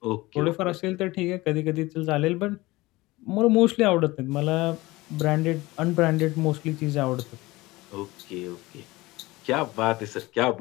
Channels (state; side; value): quieter; right; 20.4 dB